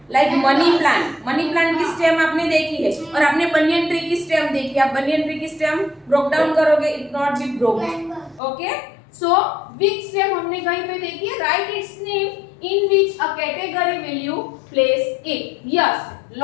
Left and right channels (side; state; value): right; drops out; at 8.4 s